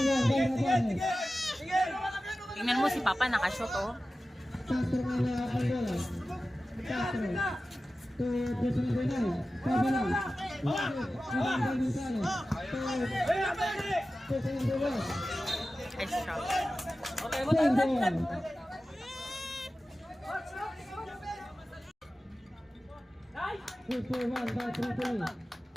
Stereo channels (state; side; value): normal; both; correlation 0.95